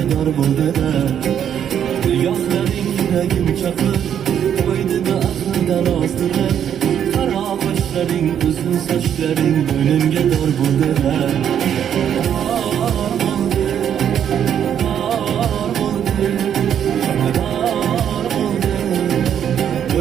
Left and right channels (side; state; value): left; quieter; 9.2 dB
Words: dar bo'ldi da Yo'qlaring yuragim chaqib qo'ydi da aqldan ozdirib Qaro qoshlaring uzun sochlaring boynumga dar bo'ldi da